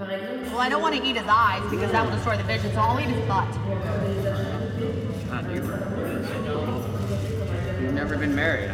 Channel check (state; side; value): identical; both; correlation 1.00